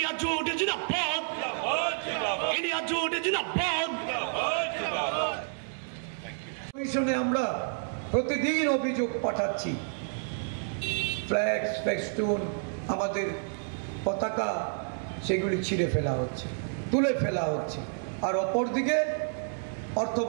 जोट जिंदाबाद इंडिया जोट जिंदाबाद কমিশনে আমরা প্রতিদিন অভিযোগ পাঠাচ্ছি ফ্ল্যাক্স ফেস্টুন আমাদের পতাকা সেগুলি ছিঁড়ে ফেলা হচ্ছে তুলে ফেলা হচ্ছে আর অপরদিকে অর্থ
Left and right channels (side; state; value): left; silent; 58 dB below the other